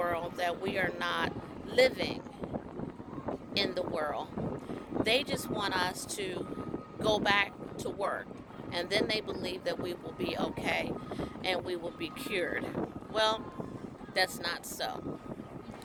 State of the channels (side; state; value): both; identical; correlation 1.00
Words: that we are not living in the world. They just want us to go back to work, and then they believe that we will be okay and we will be cured. Well, that's not so,